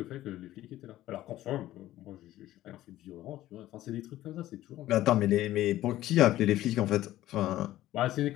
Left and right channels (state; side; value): quieter; right; 14.8 dB